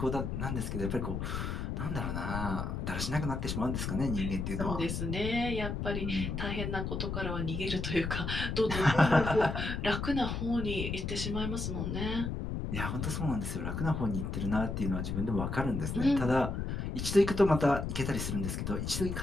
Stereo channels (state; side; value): noise; left; rumble, 3 dB below the sound